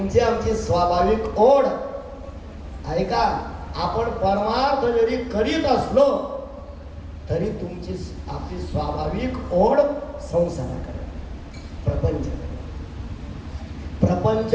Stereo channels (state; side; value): identical; both; correlation 1.00